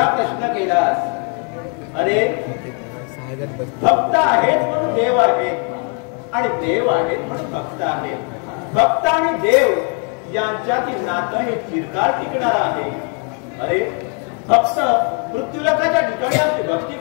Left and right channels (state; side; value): quieter; right; 39.8 dB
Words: प्रश्न केलास. अरे भक्त आहेत म्हणून देव आहेत, आणि देव आहेत म्हणून भक्त आहेत. भक्त आणि देव यांच्यातील नातं हे चिरकाल टिकणार आहे. अरे भक्त मृत्यूलोकाच्या ठिकाणी आपली भक्ती